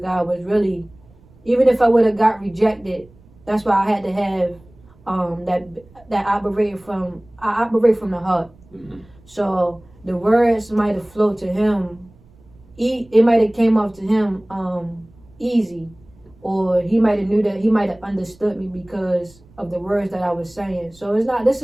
was really, even if I would have got rejected, that's why I had to have that I operate from the heart. So the words might have flowed to him. It might have came off to him easy, or he might have understood me because of the words that I was saying. So this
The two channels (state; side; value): noise; right; rumble, 27 dB below the sound